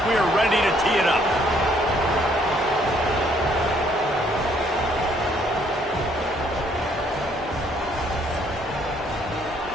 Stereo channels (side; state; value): both; normal; correlation 0.65